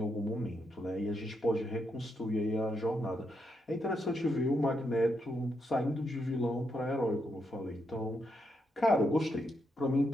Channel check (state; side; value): normal; both; correlation 0.80